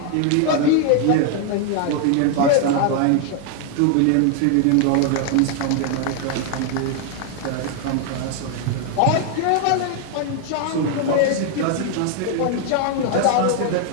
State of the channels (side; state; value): both; different; correlation 0.00